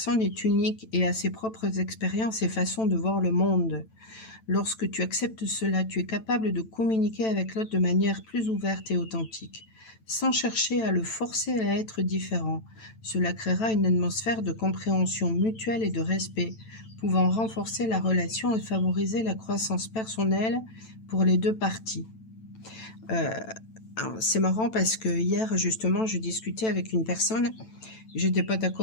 est unique et a ses propres expériences et façons de voir le monde. Lorsque tu acceptes cela, tu es capable de communiquer avec l'autre de manière plus ouverte et authentique, sans chercher à le forcer à être différent. Cela créera une atmosphère de compréhension mutuelle et de respect, pouvant renforcer la relation et favoriser la croissance personnelle pour les deux parties. C'est marrant parce que hier, justement, je discutais avec une personne, j'étais pas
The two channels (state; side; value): late; right; 9.0 ms